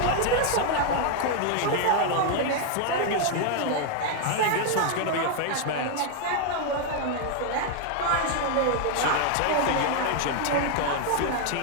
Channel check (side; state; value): both; different; correlation 0.00